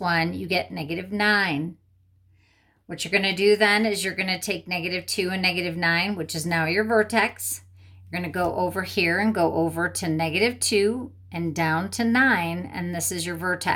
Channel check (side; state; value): both; identical; correlation 1.00